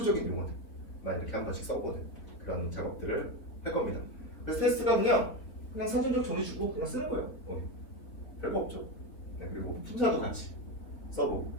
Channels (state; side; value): late; right; 3.8 ms